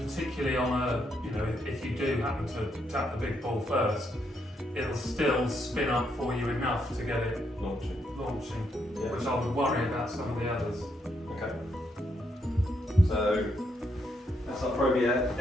on a, you know, if you do happen to tap the big ball first, it'll still spin up for you enough to get it launching. Yeah. Which I would worry about some of the others. Okay. So that's our Pro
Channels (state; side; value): normal; both; correlation 0.77